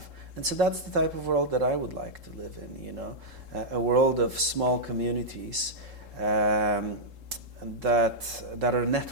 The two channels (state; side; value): late; left; 3.7 ms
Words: And so that's the type of world that I would like to live in, a world of small communities that are